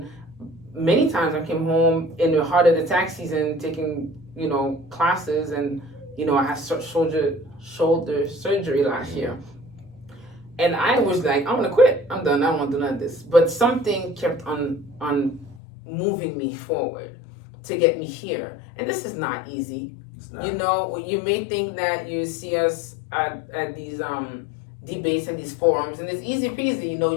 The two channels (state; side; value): drops out; right; at 15.6 s